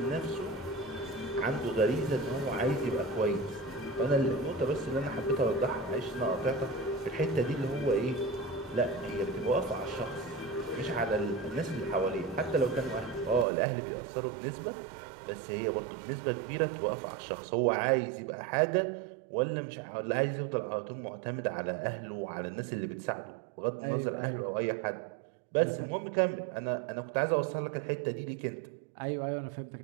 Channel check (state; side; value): drops out; left; at 13.5 s